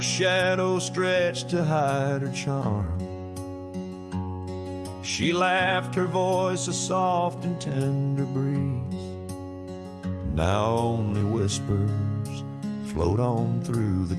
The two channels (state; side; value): identical; both; correlation 1.00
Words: shadow stretched to hide her charm, she laughed, her voice a soft and tender breeze. Now only whispers float on through the